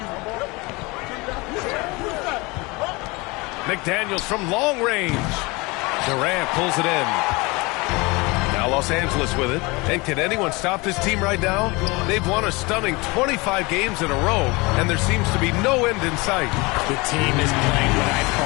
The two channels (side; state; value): right; quieter; 25.1 dB